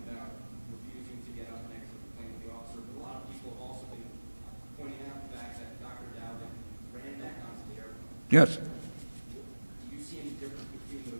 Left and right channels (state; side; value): inverted; both; correlation -1.00